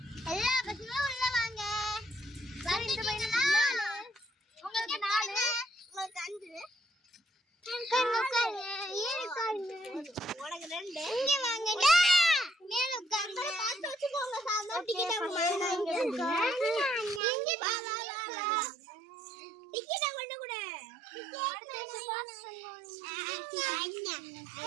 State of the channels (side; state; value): left; drops out; at 17.2 s